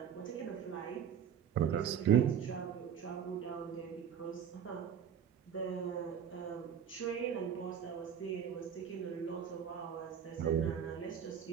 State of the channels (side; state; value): left; quieter; 8.3 dB